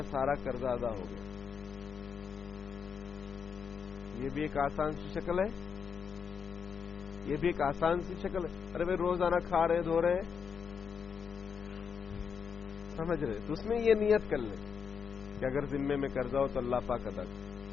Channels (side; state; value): right; quieter; 6.5 dB